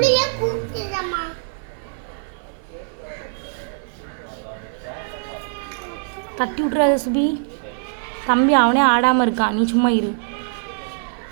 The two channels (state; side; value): silent; left; 64 dB below the other